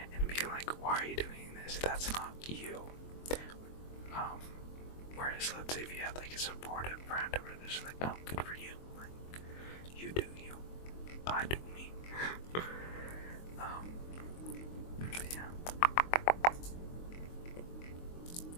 and being like, why are you doing this? That's not you. Whereas, let's say if you had, like, a supportive friend who was just like, oh, good for you. Like, you do you. I do me. But yeah.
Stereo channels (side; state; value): right; late; 23 ms